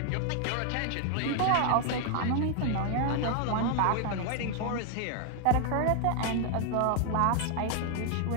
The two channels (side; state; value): both; different; correlation 0.00